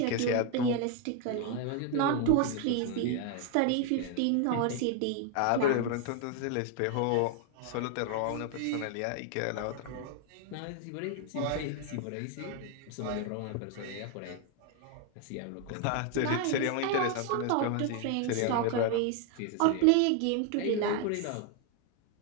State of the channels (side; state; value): both; different; correlation 0.01